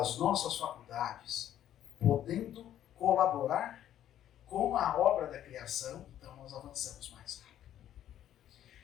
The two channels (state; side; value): quieter; right; 11.4 dB